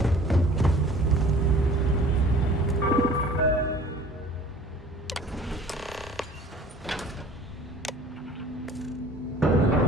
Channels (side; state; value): both; normal; correlation 0.49